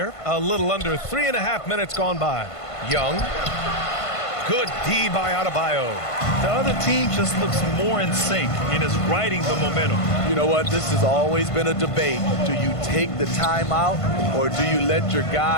A little under 3.5 minutes gone by. Young. Good D by Adebayo. The other team just looks more in sync and is riding the momentum. You know what? This has always been a debate. Do you take the timeout or do you let your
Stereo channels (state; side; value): late; right; 1.5 ms